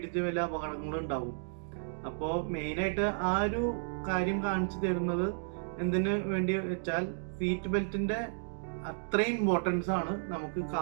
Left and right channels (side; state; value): left; silent; digital silence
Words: വലിയ അപകടങ്ങളും ഉണ്ടാവും. അപ്പോൾ മെയിനായിട്ട് ആ ഒരു കാര്യം കാണിച്ചു തരുന്നത് എന്തിനു വേണ്ടി വെച്ചാൽ, സീറ്റ് ബെൽറ്റിന്റെ അത്രയും ഇമ്പോർട്ടൻസ് ആണ് നമുക്ക്